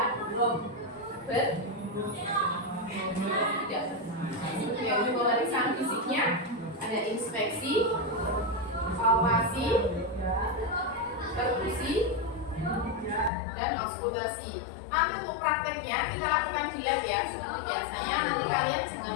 yang pemeriksaan fisiknya ada inspeksi, palpasi, perkusi, dan auskultasi. Nanti untuk prakteknya kita lakukan di lab ya, seperti biasanya. Nanti kalian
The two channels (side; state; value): right; drops out; at 13.3 s